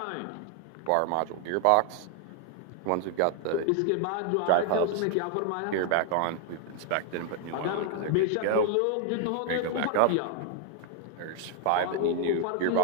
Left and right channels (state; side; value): different; both; correlation 0.00